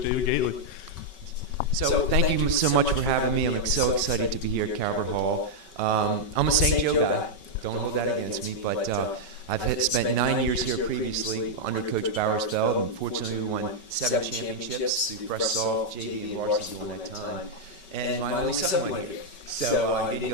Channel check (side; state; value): right; late; 5.3 ms